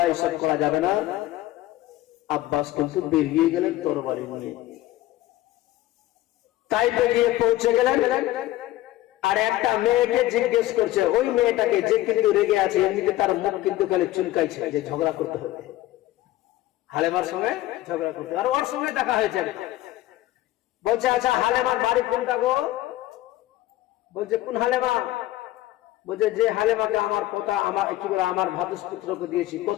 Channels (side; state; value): right; quieter; 15.6 dB